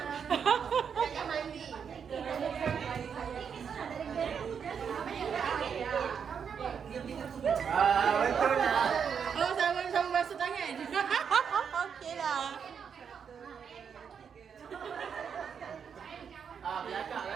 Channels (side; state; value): left; quieter; 7.0 dB